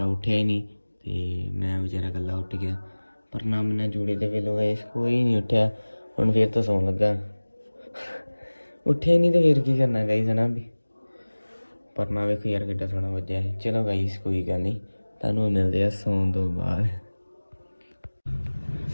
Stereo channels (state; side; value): inverted; both; correlation -1.00